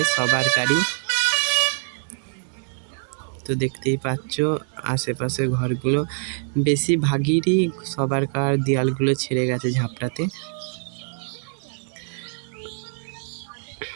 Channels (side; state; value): left; silent; 63 dB below the other